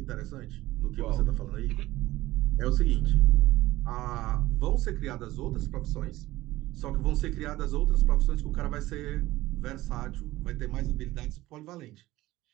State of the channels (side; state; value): left; quieter; 17.2 dB